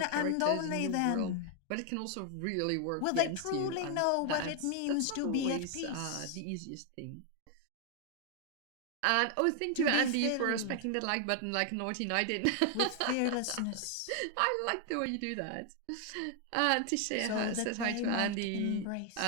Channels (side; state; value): both; different; correlation 0.00